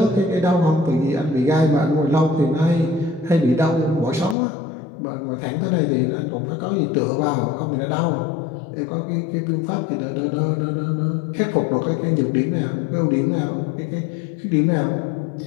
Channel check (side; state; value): right; drops out; at 4.4 s